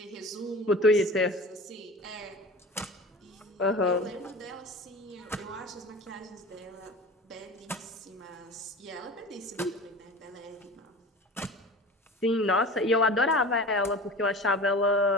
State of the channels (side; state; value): both; normal; correlation 0.37